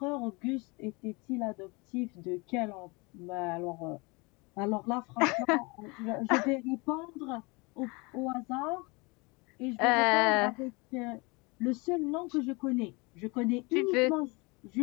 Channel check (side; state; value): right; quieter; 27.4 dB